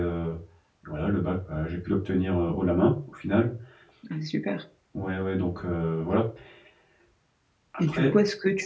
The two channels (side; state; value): both; identical; correlation 1.00